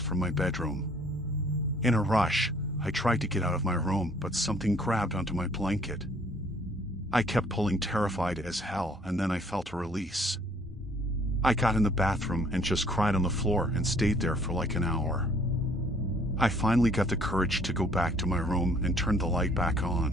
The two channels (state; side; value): normal; both; correlation 0.59